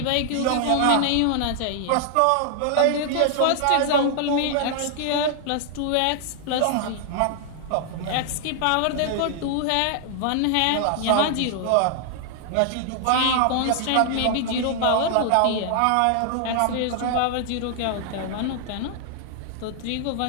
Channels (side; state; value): both; different; correlation 0.00